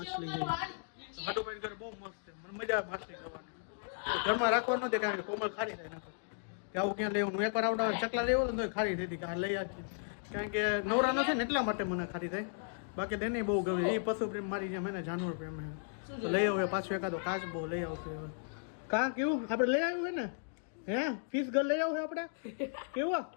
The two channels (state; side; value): silent; right; digital silence